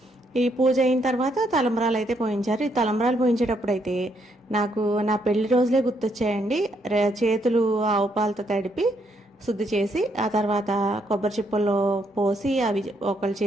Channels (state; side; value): normal; both; correlation 0.74